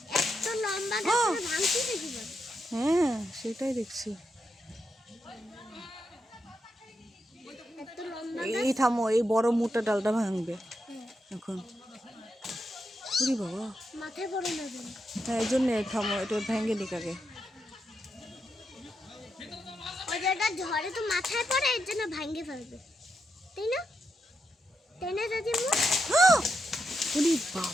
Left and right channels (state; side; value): normal; both; correlation 0.84